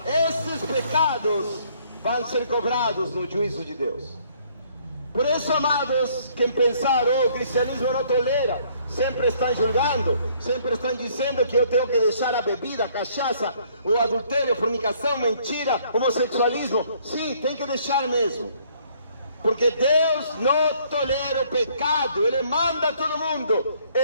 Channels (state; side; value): inverted; both; correlation -0.63